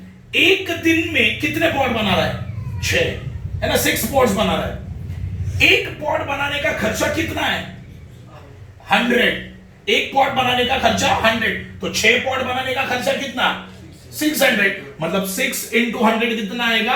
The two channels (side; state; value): both; identical; correlation 1.00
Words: एक दिन में कितने पॉट बना रहा है, 6, है ना, 6 पॉट्स बना रहा है। एक पॉट बनाने का खर्चा कितना है, 100। एक पॉट बनाने का खर्चा 100, तो 6 पॉट बनाने का खर्चा कितना, 600, मतलब 6 इंटू 100 कितना